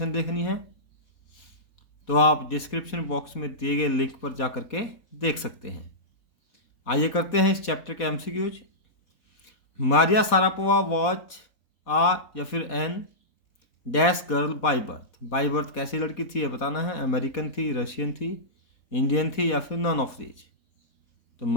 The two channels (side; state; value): right; late; 4.1 ms